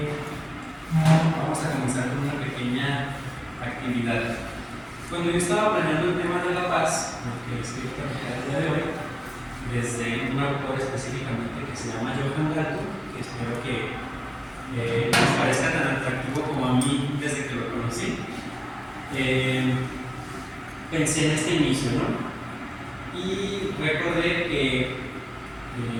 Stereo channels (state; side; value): identical; both; correlation 1.00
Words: vamos a comenzar con una pequeña actividad. Cuando yo estaba planeando el tema de la paz, lo que les quiero platicar el día de hoy, desde un autor específicamente que se llama Johann Galtung, que espero que les parezca tan atractivo como a mí desde que lo conocí, pensé en este inicio, ¿no? Y recordé que